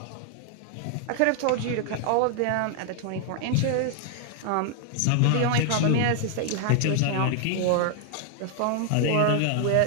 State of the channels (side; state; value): both; different; correlation 0.00